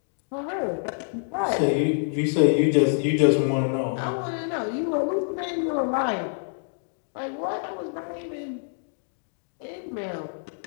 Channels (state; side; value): silent; right; digital silence